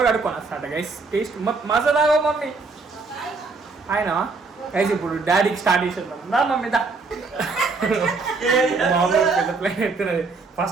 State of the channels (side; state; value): left; quieter; 4.1 dB